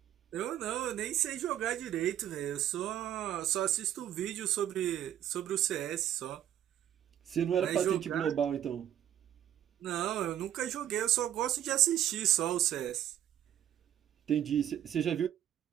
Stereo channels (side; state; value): left; quieter; 11.1 dB